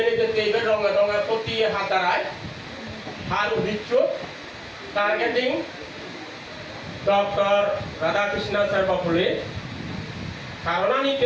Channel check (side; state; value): both; identical; correlation 1.00